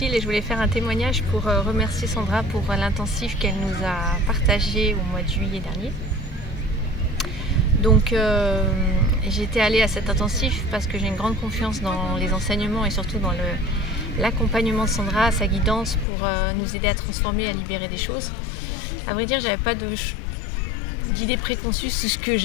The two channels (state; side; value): drops out; right; at 16.1 s